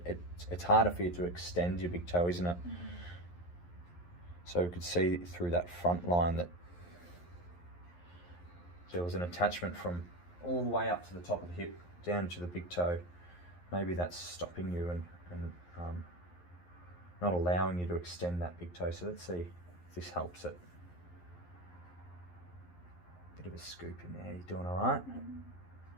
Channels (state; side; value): late; right; 11 ms